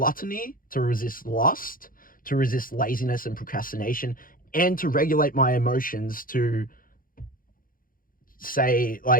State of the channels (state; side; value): late; right; 0.41 ms